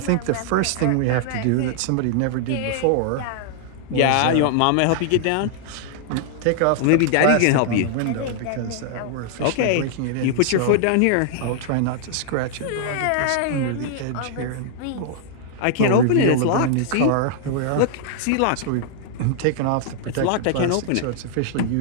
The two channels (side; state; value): both; different; correlation -0.01